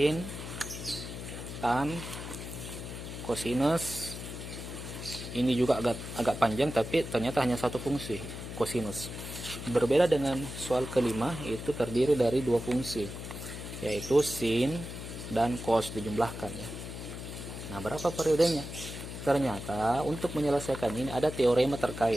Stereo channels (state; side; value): noise; left; hum, 9 dB below the sound